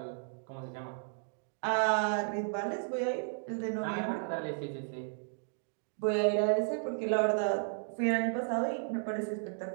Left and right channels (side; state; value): left; silent; digital silence